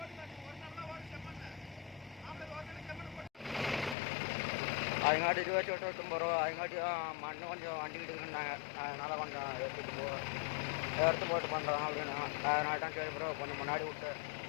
அதுங்காட்டி 28 ரூபா. அதுங்காட்டி மண்ணு கொஞ்சம் வண்டிக்கிட்டு இருந்தாங்க, அதனால கொஞ்சம் எடுத்து போட்டு பண்ணுறோம் அப்படின்னு. அதனால தான் சரி ப்ரோ கொஞ்சம் முன்னாடி விட்டு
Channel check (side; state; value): right; drops out; at 4.0 s